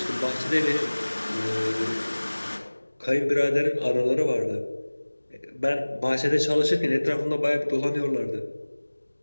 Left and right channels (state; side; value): inverted; both; correlation -1.00